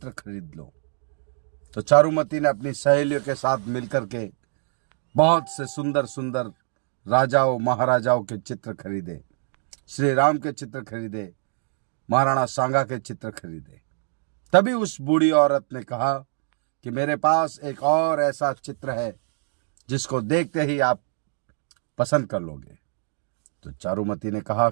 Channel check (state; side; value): silent; left; digital silence